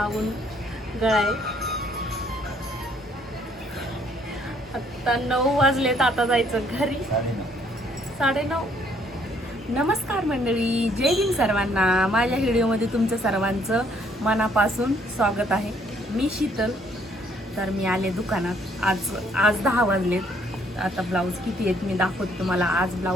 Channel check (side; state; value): both; normal; correlation 0.65